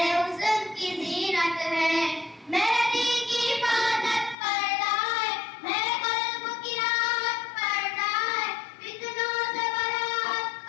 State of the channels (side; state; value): right; drops out; at 4.4 s